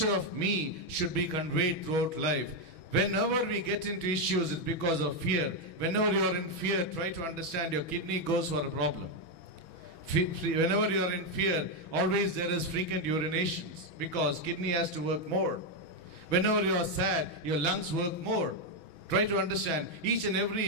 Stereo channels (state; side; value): late; right; 6.1 ms